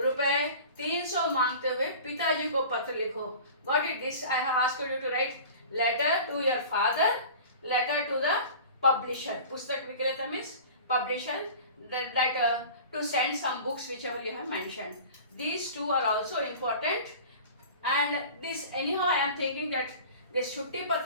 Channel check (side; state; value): both; inverted; correlation -0.39